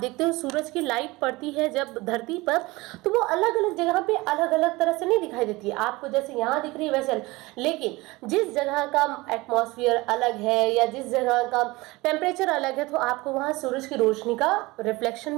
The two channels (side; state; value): left; quieter; 21.9 dB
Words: हो सूरज की लाइट पड़ती है जब धरती पर तो वो अलग अलग जगह पे अलग अलग तरह से नहीं दिखाई देती है आपको, जैसे यहाँ दिख रही है वैसे, लेकिन जिस जगह का एटमॉस्फेयर अलग है या जिस जगह का टेम्परेचर अलग है तो आपको वहाँ सूरज की रोशनी का रिफ्लेक्शन